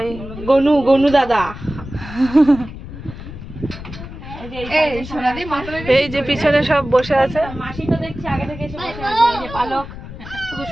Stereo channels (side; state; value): left; noise; rumble, 12 dB below the sound